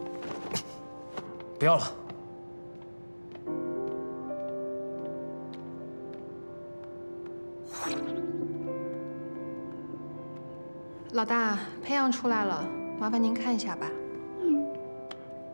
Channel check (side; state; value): both; inverted; correlation -1.00